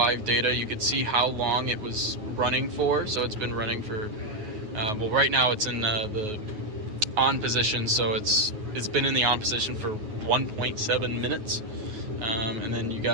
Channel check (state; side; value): late; left; 9.4 ms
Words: data. You could see how long it was running for. So it's been running for, well, right now it's in the on position. So it's been in the on position for 1.7 minutes. And then you